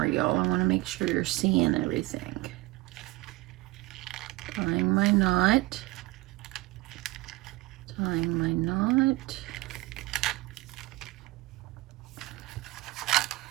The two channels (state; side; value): quieter; left; 20.1 dB